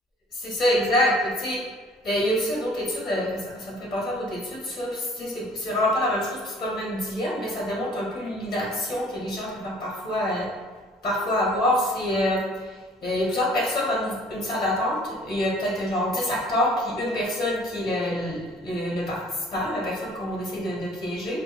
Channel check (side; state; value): both; normal; correlation 0.54